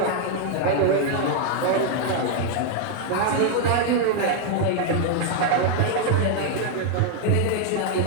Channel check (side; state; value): both; different; correlation 0.00